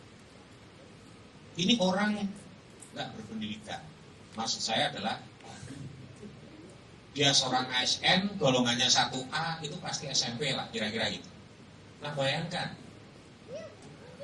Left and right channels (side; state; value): both; identical; correlation 1.00